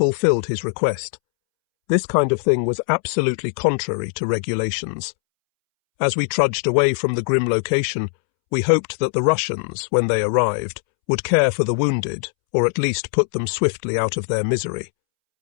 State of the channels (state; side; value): silent; right; 65 dB below the other